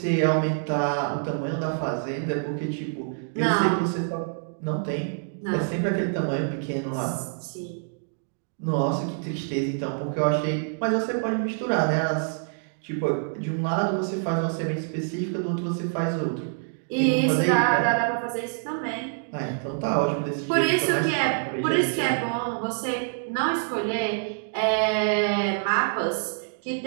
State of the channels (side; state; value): left; silent; digital silence